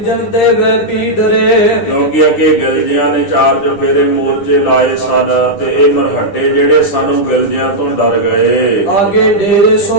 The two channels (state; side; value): late; right; 9.9 ms